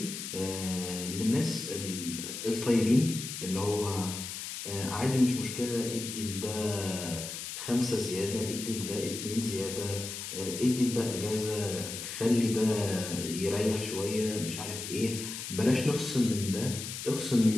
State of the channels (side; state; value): left; noise; hiss, 7 dB below the sound